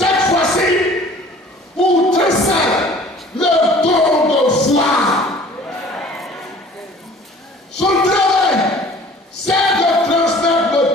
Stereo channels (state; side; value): normal; both; correlation 0.49